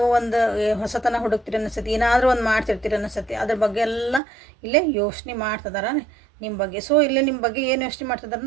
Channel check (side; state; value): left; drops out; at 4.2 s